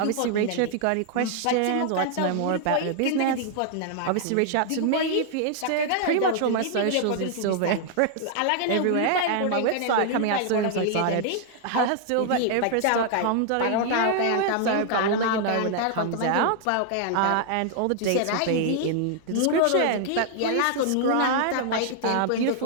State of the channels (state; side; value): different; both; correlation -0.01